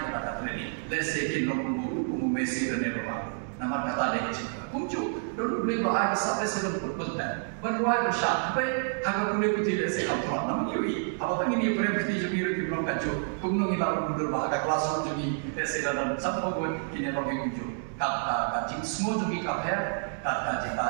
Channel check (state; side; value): silent; left; digital silence